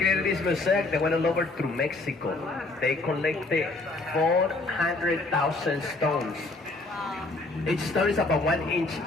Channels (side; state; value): right; quieter; 3.2 dB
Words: this mosaic, they went all over through Mexico. They collected 400,000 stones. Each stone is about 1 inch